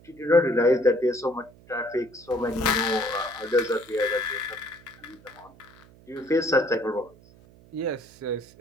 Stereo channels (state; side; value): noise; right; hum, 25 dB below the sound